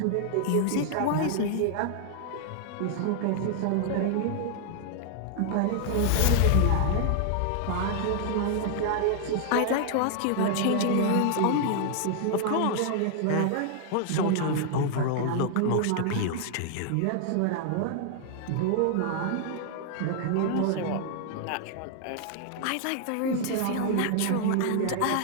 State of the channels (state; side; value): different; both; correlation 0.00